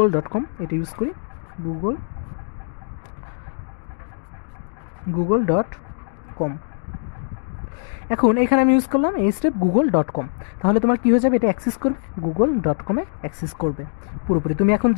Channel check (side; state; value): right; silent; digital silence